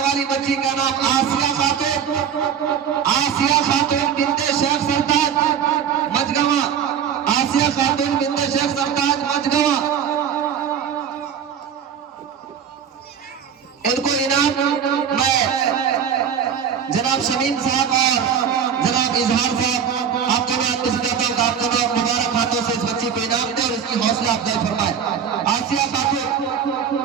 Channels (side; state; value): left; quieter; 7.8 dB